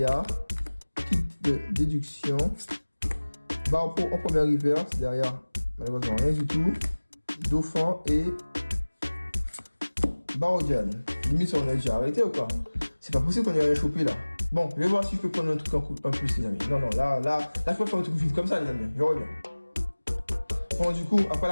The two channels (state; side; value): inverted; both; correlation -1.00